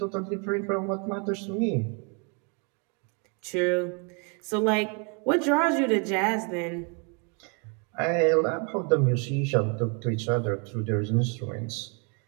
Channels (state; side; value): quieter; left; 35.8 dB